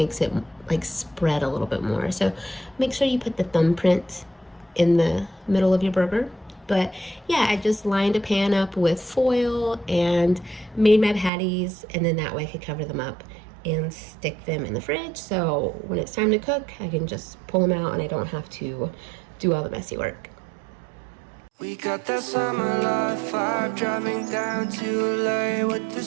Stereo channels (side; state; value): left; drops out; at 11.3 s